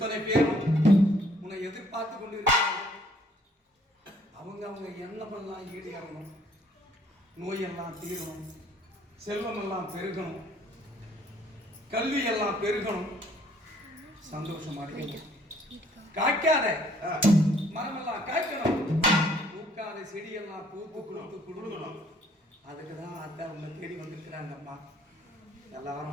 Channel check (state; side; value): normal; both; correlation 0.62